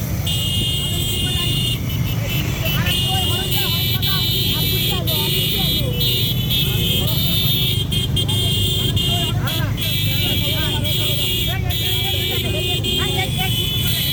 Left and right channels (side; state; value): both; identical; correlation 1.00